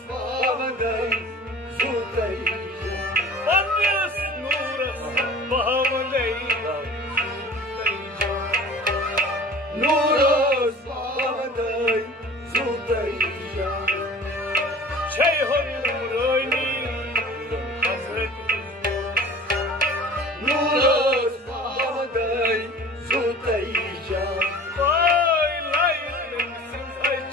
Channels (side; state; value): both; normal; correlation 0.43